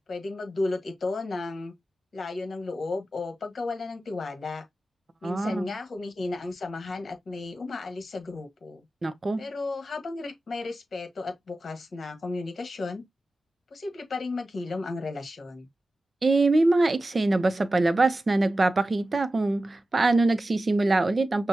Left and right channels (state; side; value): normal; both; correlation 0.94